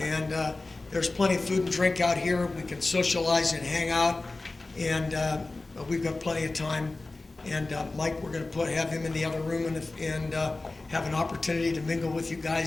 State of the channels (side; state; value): right; quieter; 3.2 dB